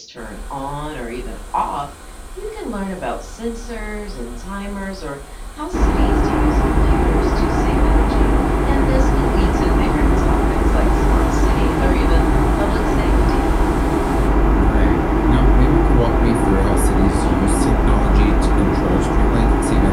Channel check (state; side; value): identical; both; correlation 1.00